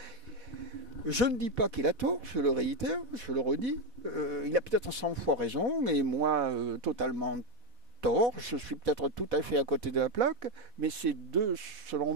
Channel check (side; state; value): left; late; 4.1 ms